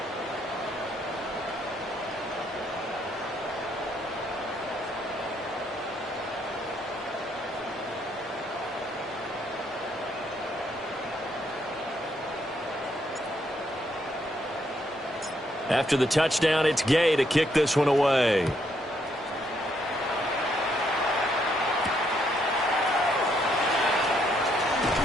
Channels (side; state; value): both; normal; correlation 0.73